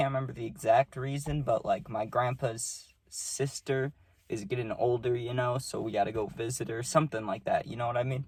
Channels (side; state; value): both; identical; correlation 1.00